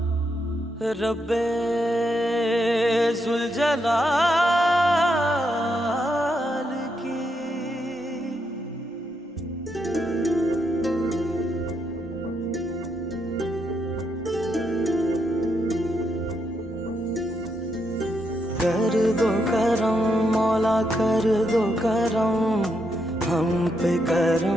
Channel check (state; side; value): normal; both; correlation 0.80